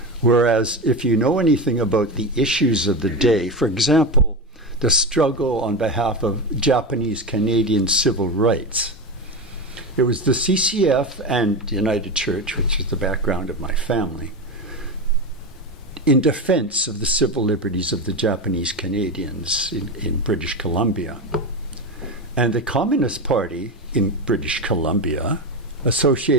Whereas if you know anything about the issues of the day, for example, the struggle on behalf of Japanese Canadian civil rights, it was the CCF and United Church, which is the background of my family, in defense of the civil liberties of the Japanese Canadians in British Columbia. And the Communist Party in British Columbia,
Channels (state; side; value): normal; both; correlation 0.19